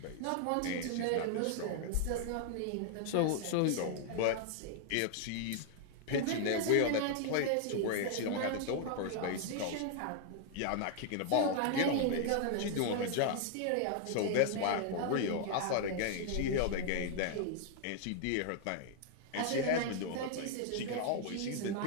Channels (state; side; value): different; both; correlation 0.00